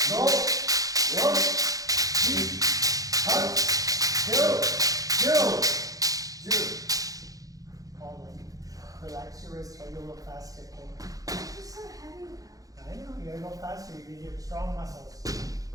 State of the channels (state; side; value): late; left; 0.17 ms